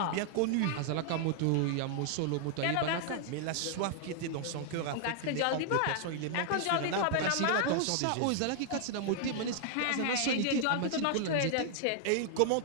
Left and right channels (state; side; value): different; both; correlation 0.00